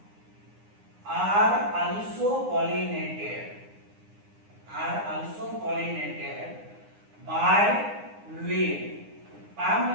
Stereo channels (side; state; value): left; late; 9.7 ms